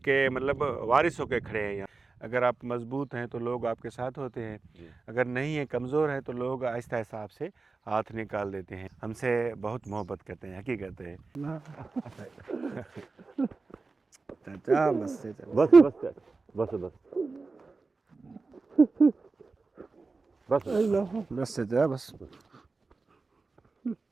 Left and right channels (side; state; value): left; quieter; 4.0 dB